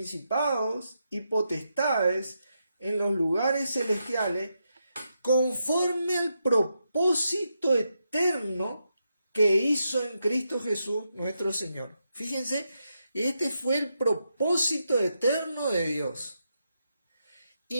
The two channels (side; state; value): both; inverted; correlation -0.84